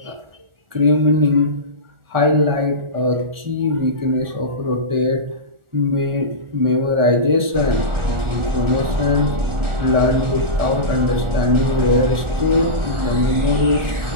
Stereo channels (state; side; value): late; left; 1.4 ms